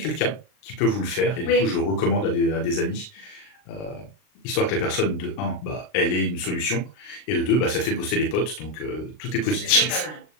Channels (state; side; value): late; right; 39 ms